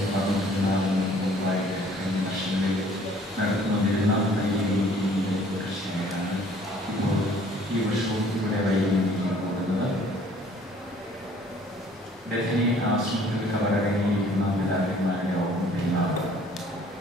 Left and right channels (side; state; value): both; normal; correlation 0.56